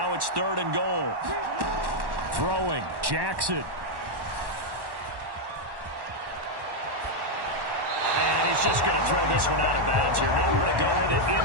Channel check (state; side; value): late; left; 1.1 ms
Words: it's 3rd and goal. Throwing, Jackson. And he's just going to throw this one out of bounds here. Nowhere to go with it.